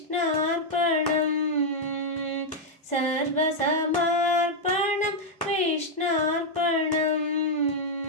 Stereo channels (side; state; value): both; normal; correlation -0.01